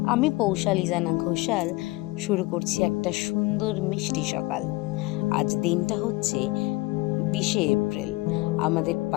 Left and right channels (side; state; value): right; quieter; 21.6 dB